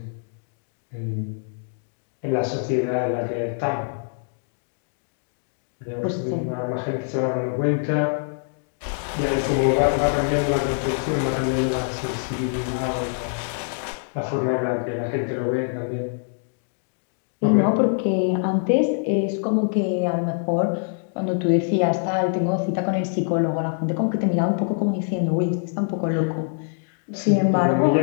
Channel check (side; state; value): right; silent; digital silence